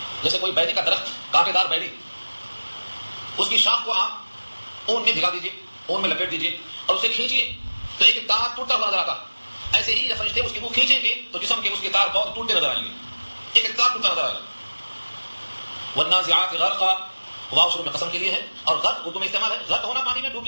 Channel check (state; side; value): inverted; both; correlation -1.00